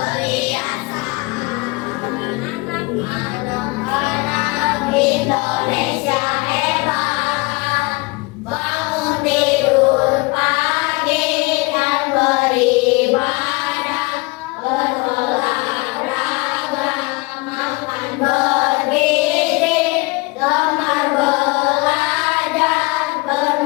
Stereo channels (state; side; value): quieter; right; 26.0 dB